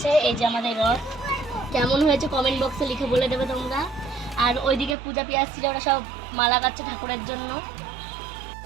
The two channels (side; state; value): left; drops out; at 5.0 s